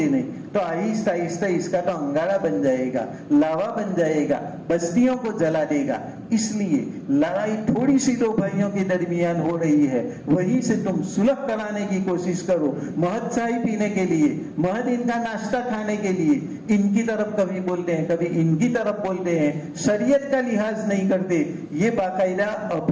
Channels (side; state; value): both; identical; correlation 1.00